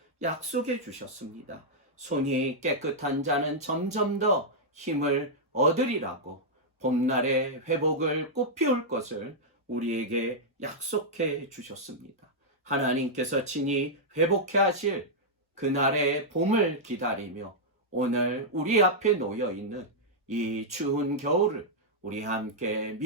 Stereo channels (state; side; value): normal; both; correlation -0.06